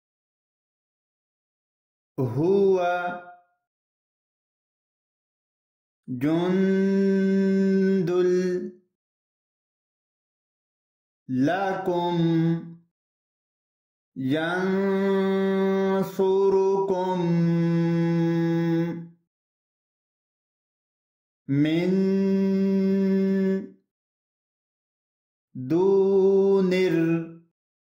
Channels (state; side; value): identical; both; correlation 1.00